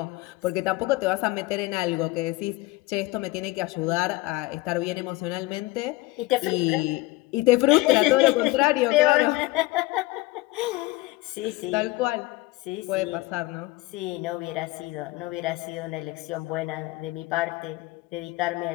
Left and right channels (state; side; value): quieter; right; 20.2 dB